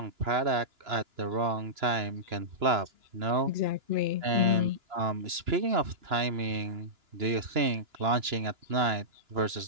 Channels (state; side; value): late; left; 2.9 ms